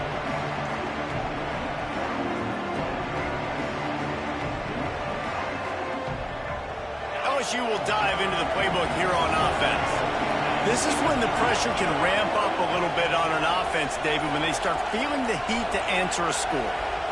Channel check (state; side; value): identical; both; correlation 1.00